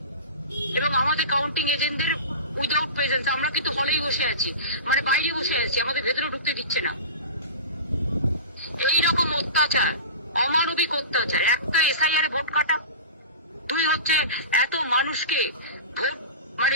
এবং আমাদের কাউন্টিং এজেন্টদের উইদাউট প্রেজেন্স। আমরা কিন্তু হলেই বসে আছি, মানে বাইরে বসে আছি, আমাদের ভেতরে ঢুকতে দিচ্ছে না। এইরকম অত্যাচার, অমানবিক অত্যাচার। একটা এসআইআর এ ভোট কাটা, 2 হচ্ছে এত মানুষকে ভোট, মানে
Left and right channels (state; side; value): inverted; both; correlation -0.31